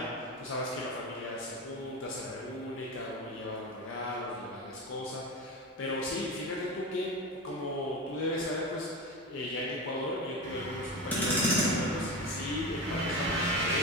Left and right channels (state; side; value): normal; both; correlation 0.24